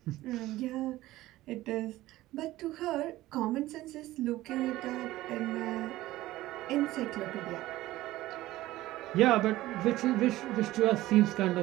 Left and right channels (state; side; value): quieter; left; 16.6 dB